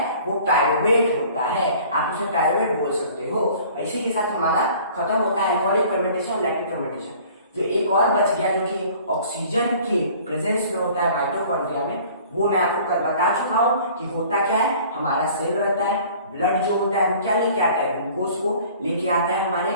वो पायरुवेट होता है, आप उसे पायरुवेट बोल सकते हो। इसी के साथ हमारा खत्म होता है एल्कोहलिक फर्मेंटेशन और लैक्टिक फर्मेंटेशन। जो एक और बच गया जो कि ऑक्सीजन के प्रेजेंस में होता है माइटोकॉन्ड्रिया में, वो मैं आपको कल बता चुका हूँ कि होता क्या है। हमारा सेल रहता है, ब्लड जो होता है वो क्या लेके आता है, ग्लूकोज को लेके आता है हमारे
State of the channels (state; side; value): inverted; both; correlation -0.50